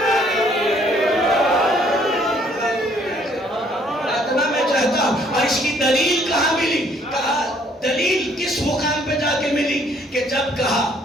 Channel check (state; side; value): normal; both; correlation 0.63